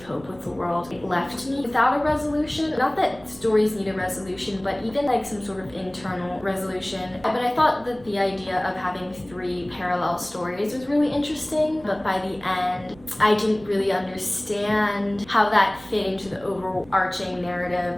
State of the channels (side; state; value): right; noise; rumble, 22 dB below the sound